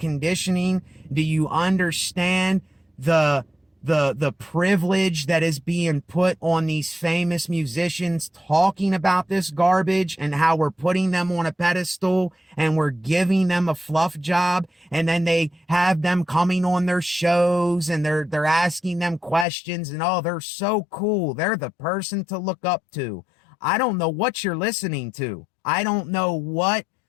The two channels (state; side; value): drops out; right; at 19.5 s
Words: Do you understand the the privilege that is being put on these famous musicians talking about this garbage and how we're putting them on a pedestal and we're giving them a fluff job, and then they have them coming on their shows and they're asking them questions and oh, they're so cool. They're the person to look up to. I don't know what you're listening to. I don't know what